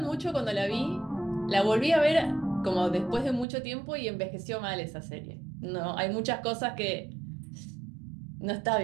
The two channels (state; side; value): drops out; left; at 3.5 s